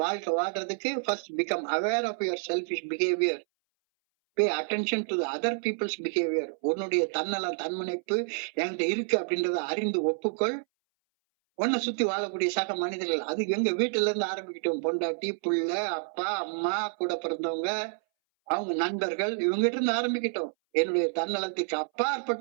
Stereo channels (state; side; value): silent; left; 59 dB below the other